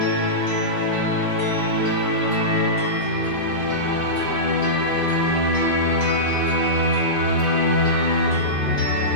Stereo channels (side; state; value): right; late; 5.2 ms